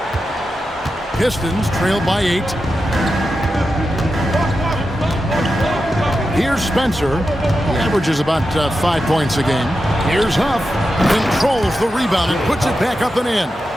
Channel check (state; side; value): normal; both; correlation 0.90